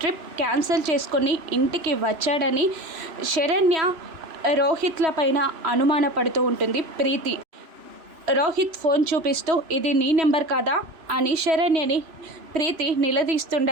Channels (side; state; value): left; late; 3.0 ms